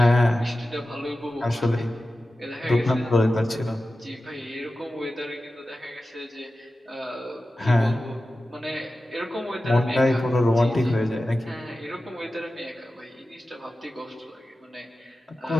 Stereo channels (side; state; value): both; normal; correlation 0.94